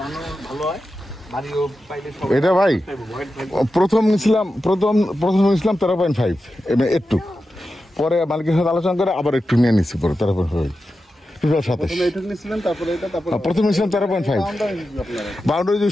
ভালো হয়। এটা ভাই প্রথম নিয়েছিলাম 13.5 একটু পরে মালিকের সাথে আলোচনা করে আবার একটু নিয়ে নিচ্ছি পরে 13.5 প্রথম নিয়েছিলাম 13.5 বাউন্ডারি যে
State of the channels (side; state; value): both; normal; correlation 0.91